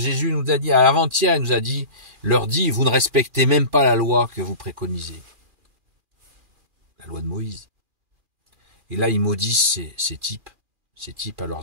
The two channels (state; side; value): late; left; 2.4 ms